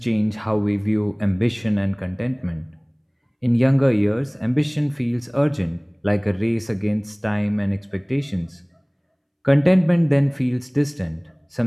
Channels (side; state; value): both; identical; correlation 1.00